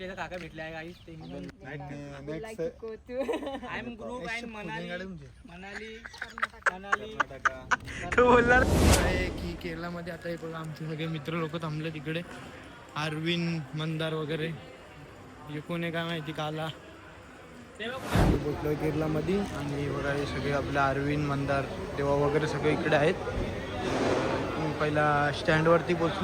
काका भेटले आहे गाईस. ते I am group and Manali तो बोलणार की केरळमध्ये आता हे बघा आमचे सगळे मित्र लोक थांबले तिकडे. अरविंद मंदार वगैरे हे कोण आहे काय माहिती. काला पोचलोय केरळमध्ये आणि बघा हे सगळे आपले अरविंद मंदार देवा वगैरे सगळे इकडे आहेत. पहिला स्टँडवरती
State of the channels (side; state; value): both; identical; correlation 1.00